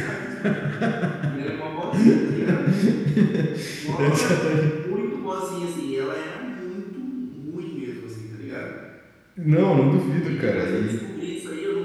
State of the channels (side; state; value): both; identical; correlation 1.00